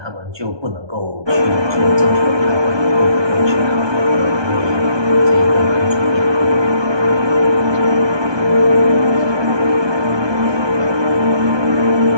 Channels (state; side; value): late; left; 1.2 ms